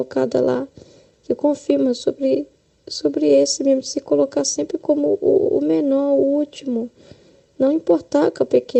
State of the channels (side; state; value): both; identical; correlation 1.00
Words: lá, que confirma sobre esse mesmo, de se colocar sempre como o menor, o último. Não importar com a